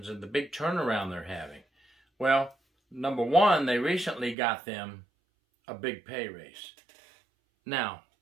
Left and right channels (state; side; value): drops out; left; at 4.4 s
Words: and the big turnaround they're having. Well, number one, they recently got them a big pay raise. Now,